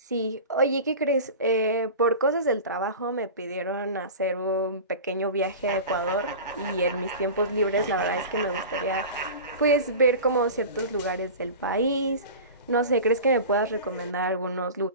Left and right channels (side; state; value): both; inverted; correlation -0.33